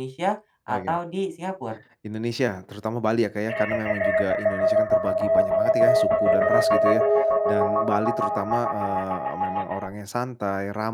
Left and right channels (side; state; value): both; identical; correlation 1.00